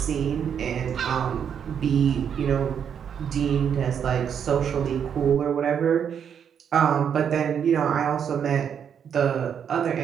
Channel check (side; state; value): left; quieter; 8.0 dB